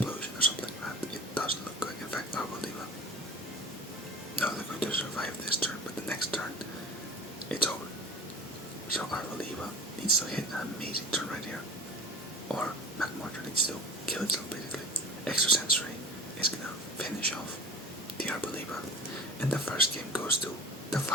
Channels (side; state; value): both; normal; correlation 0.37